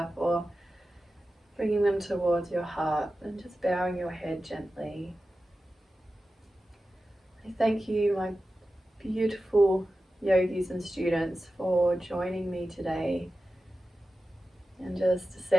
or bringing them towards your heart and just bowing your head gently. I thank you, my beautiful yogis and students, for joining me today and just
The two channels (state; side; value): normal; both; correlation 0.93